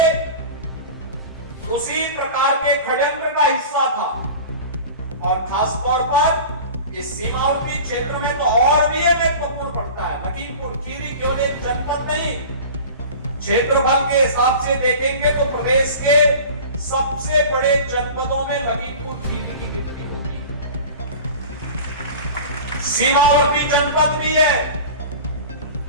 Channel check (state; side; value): inverted; both; correlation -0.36